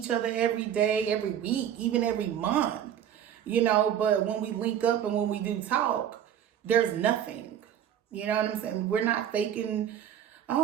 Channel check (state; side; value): quieter; left; 9.8 dB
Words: other every day, every week, even every month, you know. But when we link up and when we do talk, there's nothing. You know what I'm saying? We're not faking,